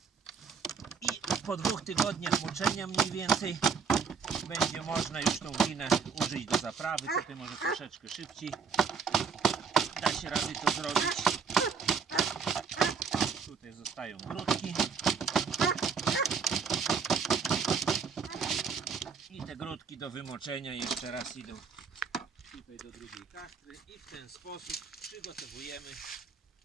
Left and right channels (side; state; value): left; quieter; 5.8 dB